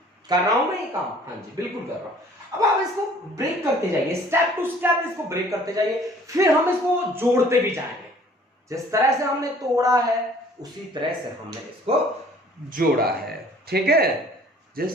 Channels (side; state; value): both; normal; correlation 0.54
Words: कर रहा हूं मैं ये काम, हाँ जी बिल्कुल कर रहा हूं। अब आप इसको ब्रेक करते जाइए, स्टेप टू स्टेप इसको ब्रेक करते जाइए, फिर हम इसको जोड़ते भी जाएंगे। जिस तरह से हमने तोड़ा है उसी तरह से हमने इसको जोड़ा है, ठीक है।